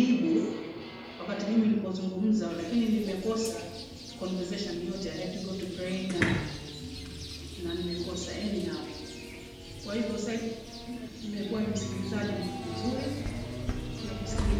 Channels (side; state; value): both; identical; correlation 1.00